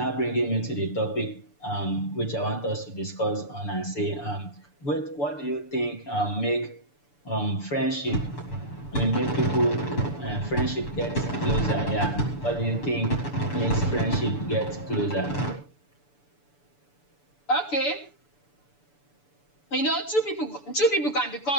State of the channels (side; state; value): right; late; 6.9 ms